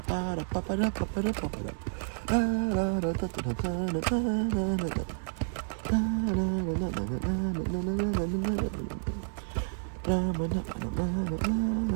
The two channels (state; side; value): silent; left; 58 dB below the other